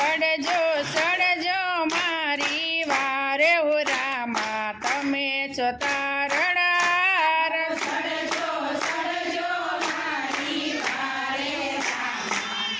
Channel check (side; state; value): both; identical; correlation 1.00